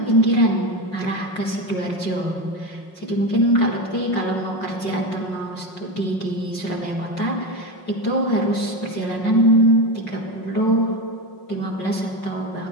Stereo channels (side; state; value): right; late; 5.5 ms